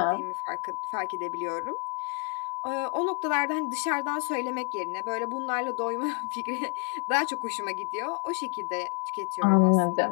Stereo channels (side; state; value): right; quieter; 34.2 dB